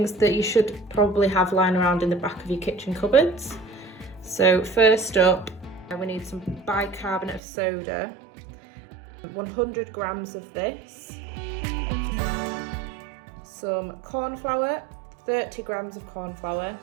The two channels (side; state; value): left; drops out; at 7.4 s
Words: that you should probably have lying around in the back of your kitchen cupboards. So first up we need some bicarbonate of soda, 100 grams of this, some corn flour, 30 grams of corn flour,